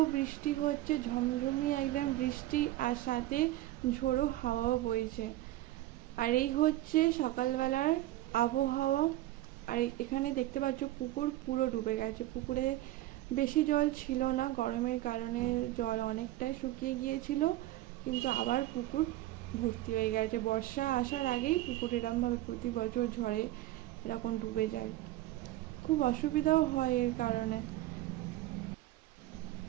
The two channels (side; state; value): left; quieter; 15.8 dB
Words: বৃষ্টি হচ্ছে, ঝমঝমি একদম বৃষ্টি, আর সাথে ঝোড়ো হাওয়াও বইছে। আর এই হচ্ছে সকালবেলার আবহাওয়া। আর এখানে দেখতে পাচ্ছ পুকুর পুরো ডুবে গেছে। পুকুরে বেশি জল ছিল না, গরমের কারণে জল অনেকটাই শুকিয়ে গিয়েছিল, কিন্তু আবার পুকুর ভর্তি হয়ে গেছে। বর্ষা আসার আগেই পুকুর এরমভাবে প্রতি বছর ঝড়ে এরকম ডুবে যায়, খুব অসুবিধাও হয় এর কারণে।